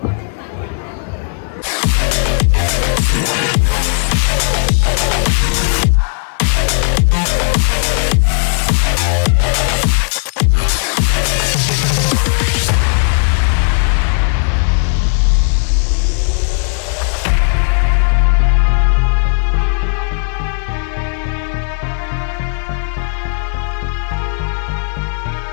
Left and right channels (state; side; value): silent; right; digital silence